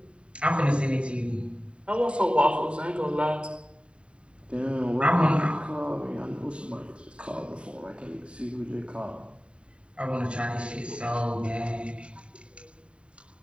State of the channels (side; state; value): left; late; 0.056 ms